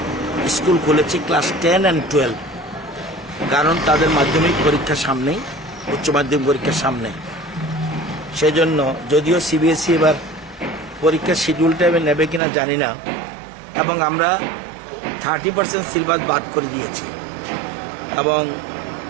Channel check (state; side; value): drops out; left; at 12.4 s